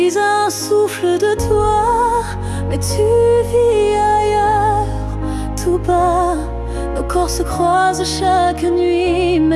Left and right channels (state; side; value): identical; both; correlation 1.00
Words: un souffle de toi, mais tu vis ailleurs, tout bas. Nos corps se croisent chaque nuit,